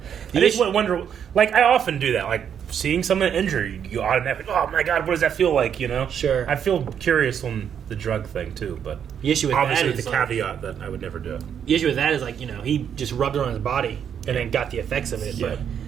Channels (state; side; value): quieter; left; 8.3 dB